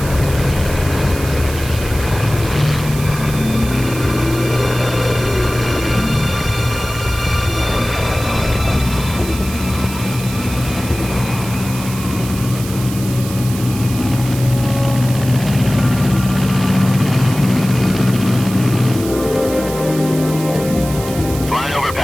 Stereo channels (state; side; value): noise; right; hiss, 12 dB below the sound